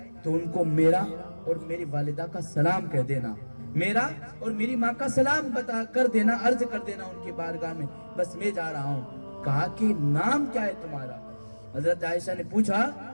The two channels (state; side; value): inverted; both; correlation -1.00